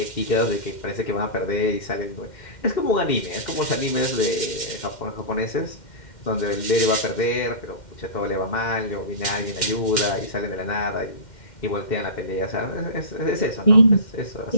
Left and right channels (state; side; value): late; right; 2.1 ms